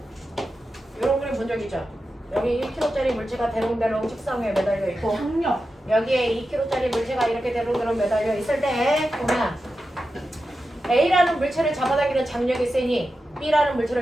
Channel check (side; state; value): both; normal; correlation 0.91